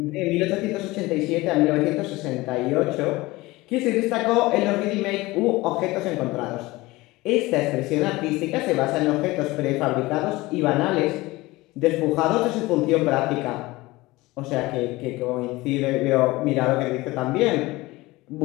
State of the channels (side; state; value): right; quieter; 20.5 dB